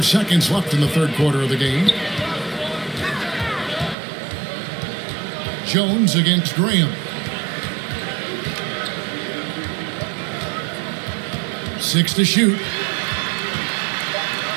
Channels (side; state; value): left; drops out; at 4.0 s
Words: seconds left in the third quarter of the game. Jones against Graham. 6 to shoot.